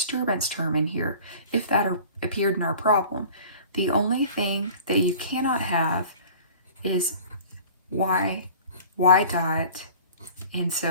term in here, if that appeared in our problem. The only thing that you cannot have is y dot, and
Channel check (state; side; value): inverted; both; correlation -0.45